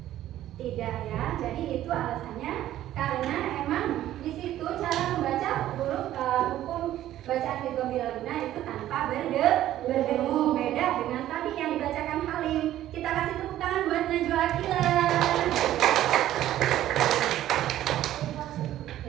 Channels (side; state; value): left; quieter; 13.1 dB